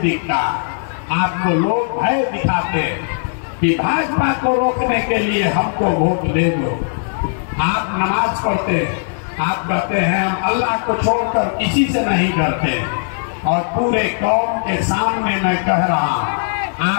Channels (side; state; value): right; silent; digital silence